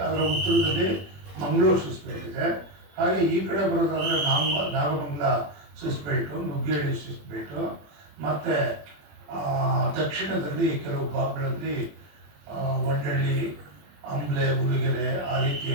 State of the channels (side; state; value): left; late; 21 ms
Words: ಅದರ ಉತ್ತರದಲ್ಲಿ ಮಂಗಳೂರು ಶಿಸ್ಟ್ ಬೆಲ್ಟ್ ಇದೆ. ಹಾಗೆ ಈ ಕಡೆ ಬರೋದಾದರೆ Nagamangala schist belt, Nuggehalli schist belt, ಮತ್ತು ದಕ್ಷಿಣದಲ್ಲಿ ಕೆಲವು ಭಾಗಗಳಲ್ಲಿ ವಂಡಳ್ಳಿ, ಅಂಬ್ಲೆ, ಉಲಿಗೆರೆ ಆ ರೀತಿಯ